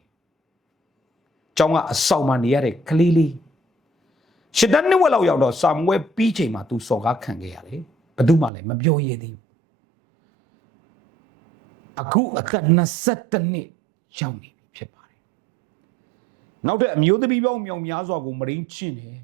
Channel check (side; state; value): left; drops out; at 8.5 s